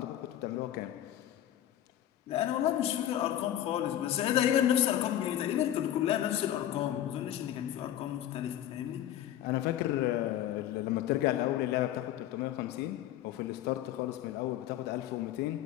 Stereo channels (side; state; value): right; quieter; 12.0 dB